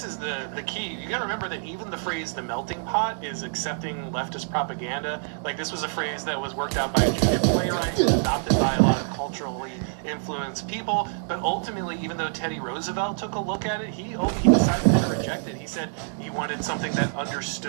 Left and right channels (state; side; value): silent; left; digital silence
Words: is the key. You gotta remember that even the phrase "the melting pot" is accepting leftist propaganda. Like, this was a phrase that was worked out by a junior playwright, adopted by a lot of culturally influenced people. But ultimately, even though Teddy Roosevelt took a look at it, he decided to reject it. He said he wanted something that